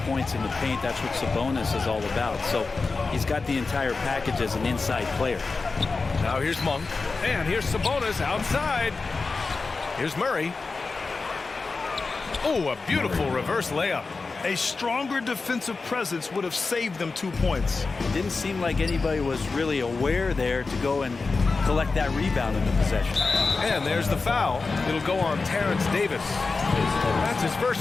points in the paint. That's what Sabonis is all about. So he's got the entire package as an inside player. Now here's Monk, and here's Sabonis outside. Here's Murray. Oh, a beautiful reverse layup. A stronger defensive presence would have saved them 2 points. It didn't seem like anybody was really aware there to go and collect that rebound in the possession. And there's the foul. It'll go on Terrence Davis. That's his first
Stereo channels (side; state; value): right; quieter; 4.1 dB